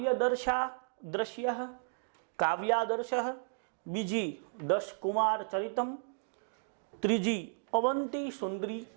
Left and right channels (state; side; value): silent; left; digital silence